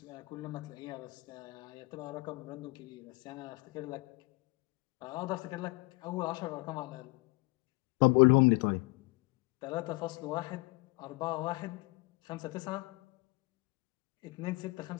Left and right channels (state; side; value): quieter; right; 25.8 dB